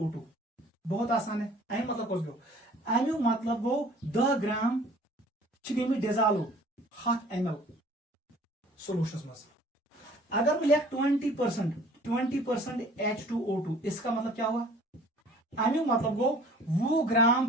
बहुत आसान है, अमी मतलब कुछ गो, अमु मतलब गो 10 ग्राम गई डिजाल्व 100 ml सोल्यूशन मज। अगर मैं लिख 20% H2O2, इसका मतलब क्या हुआ, अमु मतलब गो 20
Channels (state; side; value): normal; both; correlation 0.51